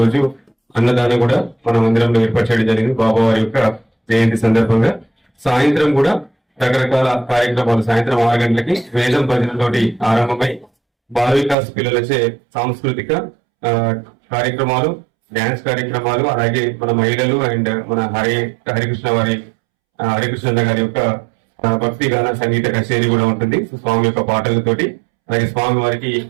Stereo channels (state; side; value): drops out; left; at 11.6 s